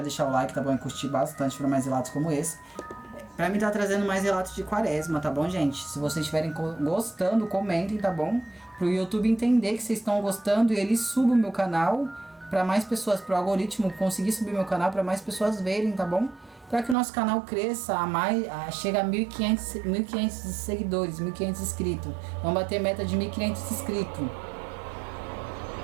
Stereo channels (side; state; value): left; drops out; at 16.9 s